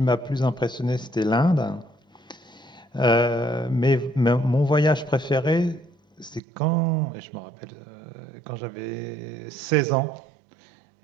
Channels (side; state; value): left; drops out; at 6.4 s